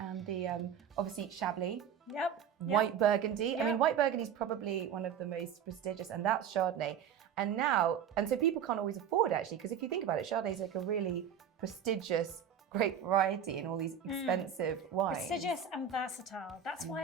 the, obviously, Chablis. White Burgundy. Yep. I mean, White Burgundy is probably one of the most prestigious, and that's Chardonnay. And so people can't always afford actually, because if you think about it, Chardonnay is like a really prestigious, great variety in all these expensive wines. Prestigious and versatile. That's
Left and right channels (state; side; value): quieter; left; 8.1 dB